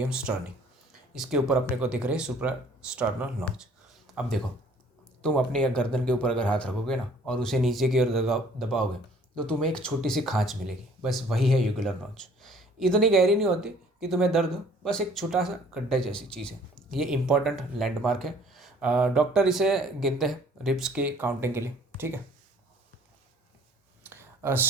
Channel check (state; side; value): normal; both; correlation 0.55